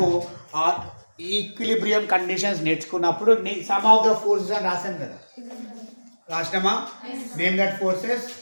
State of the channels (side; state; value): both; inverted; correlation -1.00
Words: ఈక్విలిబ్రియం కండిషన్స్ నేర్చుకున్నప్పుడు సమ్ ఆఫ్ ద ఫోర్సెస్ అని రాసాం కదా, రాసినామా? Name that forces: